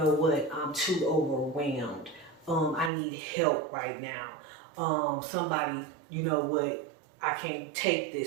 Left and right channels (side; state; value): left; drops out; at 2.9 s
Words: what, I'm too overwhelmed. I need help right now. Somebody, you know what, I can't take